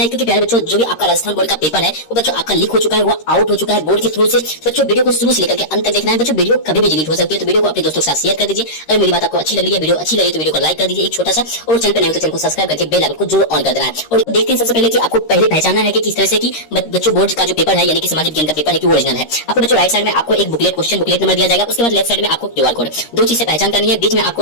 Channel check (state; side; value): late; right; 13 ms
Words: क्योंकि प्यारे बच्चों जो भी आपका राजस्थान बोर्ड का पेपर है वो बच्चों आपका लीक हो चुका है, वो आउट हो चुका है बोर्ड के थ्रू से। बच्चों वीडियो को शुरू से लेकर के अंत तक देखना है। बच्चों वीडियो कभी भी डिलीट हो सकती है, तो वीडियो को अपने दोस्तों के साथ शेयर कर दीजिए। अगर मेरी बात आपको अच्छी लग रही है, वीडियो अच्छी लगी तो वीडियो को लाइक कर दीजिए एक छोटा सा, और चैनल पर नए हो तो चैनल को सब्सक्राइब करके बेल आइकन को जरूर ऑन कर देना है। और देखते हैं सबसे पहले कि आपको पहले पहचानना है कि किस तरह से कि बच्चों बोर्ड का जो पेपर है यानी कि सामाजिक विज्ञान का पेपर है कि ओरिजिनल है। आपको बच्चों राइट साइड में आपको एक बुकलेट क्वेश्चन बुकलेट नंबर दिया जाएगा, उसके बाद लेफ्ट साइड में आपको क्यूआर कोड, दो चीज से पहचान करनी है। बीच में आपको